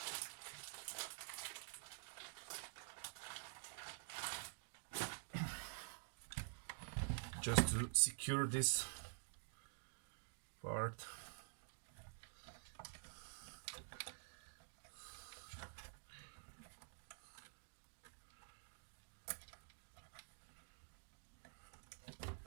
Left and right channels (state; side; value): silent; left; digital silence